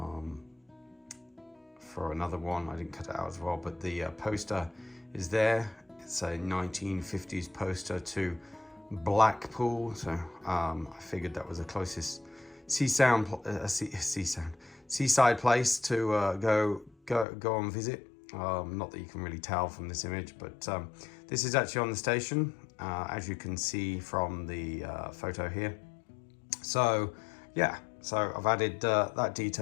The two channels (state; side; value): drops out; right; at 17.2 s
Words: for another one. I didn't cut it out as well, but the poster is there. It's a 1950s poster to Blackpool, so I figured that was the closest seaside place to go and visit. Not that you can really tell from this image, but this is actually on the station, as you can see from the photo here. So yeah, so I've added that